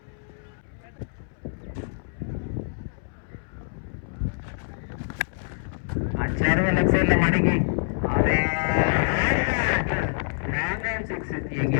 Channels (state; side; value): silent; right; 61 dB below the other